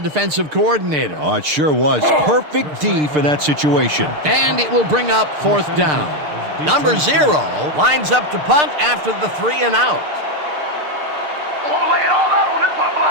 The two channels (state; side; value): late; left; 6.7 ms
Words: defensive coordinator. Oh, it sure was. Perfect D for that situation. And it will bring up fourth down. Number 0 lines up to punt after the 3 and out. I want to lay it all out on this punt